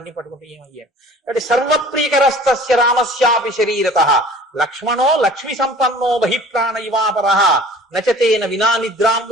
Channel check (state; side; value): normal; both; correlation 0.47